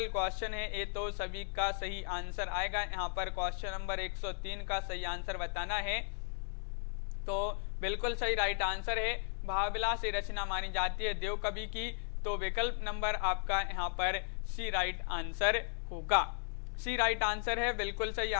क्वेश्चन है, ये तो सभी का सही आंसर आएगा। यहाँ पर क्वेश्चन नंबर 103 का सही आंसर बताना है, तो बिल्कुल सही राइट आंसर है। भाव विलास ये रचना मानी जाती है देव कवि की, तो विकल्प नंबर आपका यहाँ पर सी राइट आंसर होगा। सी राइट आंसर है, बिल्कुल सही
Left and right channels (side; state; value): right; silent; digital silence